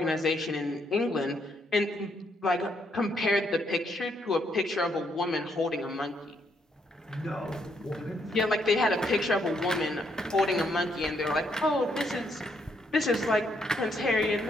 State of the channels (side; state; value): both; normal; correlation 0.74